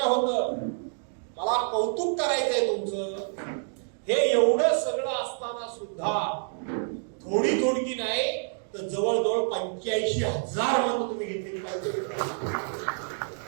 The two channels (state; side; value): silent; left; digital silence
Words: होतं, मला कौतुक करायचंय तुमचं, हे एवढं सगळं असताना सुद्धा थोडी थोडकी नाही तर जवळजवळ 85,000 मतं तुम्ही घेतलेली पाहिजे.